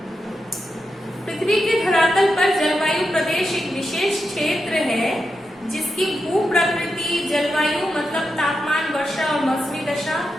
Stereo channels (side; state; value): both; normal; correlation 0.87